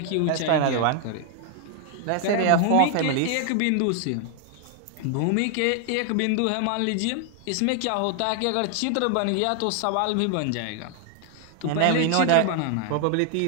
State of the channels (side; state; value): both; different; correlation 0.00